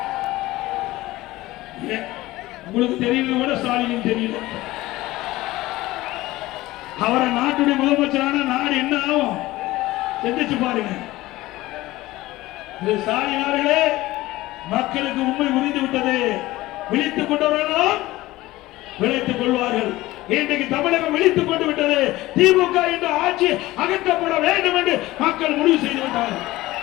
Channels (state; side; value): quieter; right; 18.0 dB